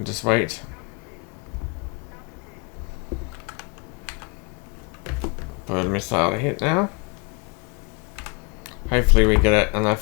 just wait. For the missile to hit now. Hopefully we get it on our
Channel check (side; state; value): right; quieter; 31.1 dB